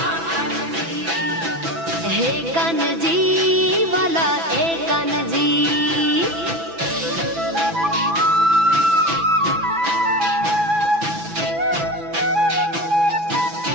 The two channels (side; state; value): left; late; 6.0 ms